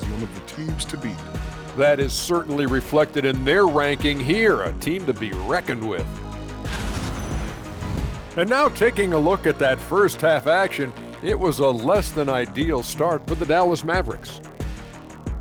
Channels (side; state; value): both; identical; correlation 1.00